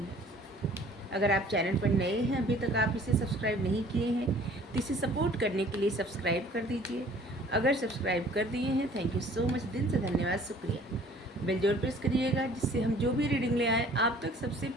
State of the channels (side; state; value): both; normal; correlation 0.53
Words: अगर आप चैनल पर नए हैं, अभी तक आप इसे सब्सक्राइब नहीं किए हैं, तो इसे सपोर्ट करने के लिए सब्सक्राइब कर दीजिए। अगर सब्सक्राइब कर दिए हैं, थैंक यू सो मच, दिल से धन्यवाद, शुक्रिया। बेल जरूर प्रेस करिएगा, जिससे हम जो भी रीडिंग ले आए आप तक सबसे